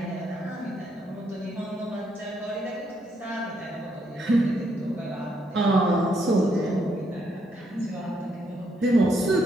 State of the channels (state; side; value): normal; both; correlation 0.75